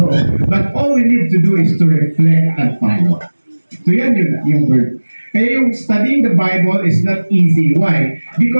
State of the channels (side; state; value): both; inverted; correlation -1.00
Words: But all we need to do is to reflect and follow. So yan yung word. Kaya yung studying the Bible is not easy. Why?